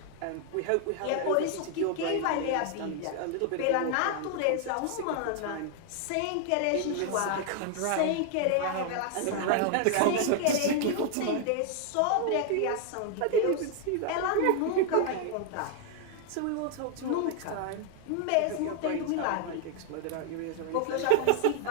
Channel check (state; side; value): different; both; correlation 0.00